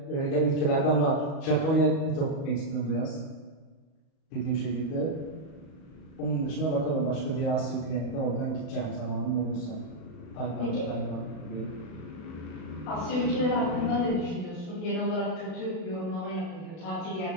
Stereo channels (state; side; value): late; right; 38 ms